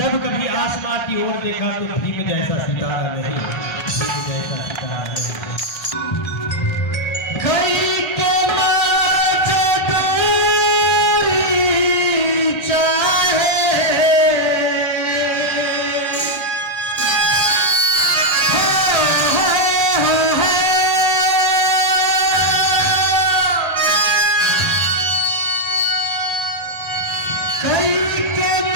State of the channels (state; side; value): late; right; 1.3 ms